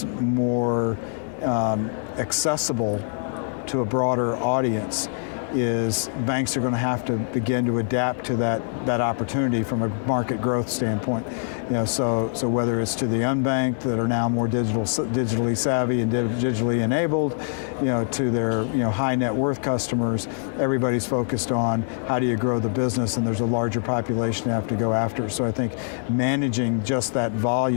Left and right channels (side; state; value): right; silent; 62 dB below the other